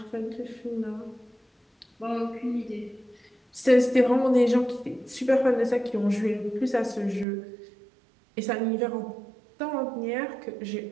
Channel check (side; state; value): left; drops out; at 7.2 s